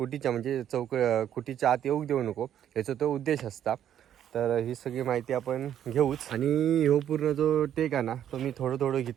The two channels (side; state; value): left; quieter; 10.3 dB